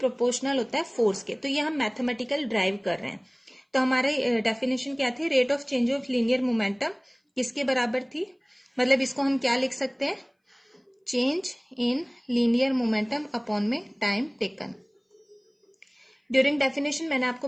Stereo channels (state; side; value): identical; both; correlation 1.00